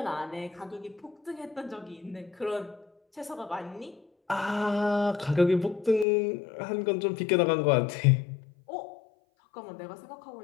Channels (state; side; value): drops out; right; at 6.1 s